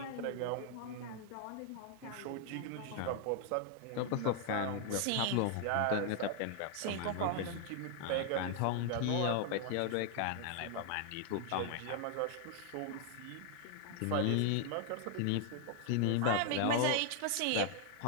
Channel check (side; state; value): both; different; correlation 0.00